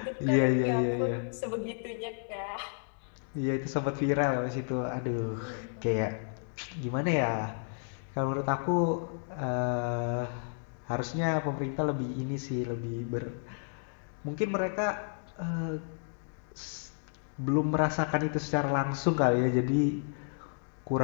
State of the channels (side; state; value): right; silent; digital silence